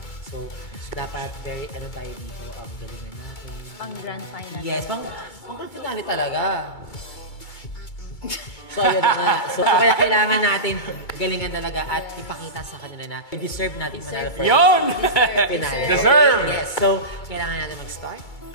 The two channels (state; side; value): late; right; 2.3 ms